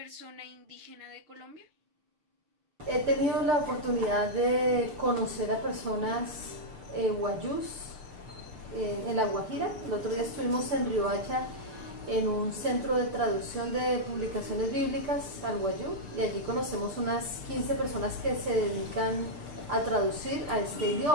indígena de Colombia? He tenido la oportunidad de conocer a personas guayús en La Guajira. El otro día estuvimos en Riohacha en un centro de traducción de publicaciones bíblicas al guayú y allí conocemos unas 15 personas que se dedican a traducir a este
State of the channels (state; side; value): late; left; 6.3 ms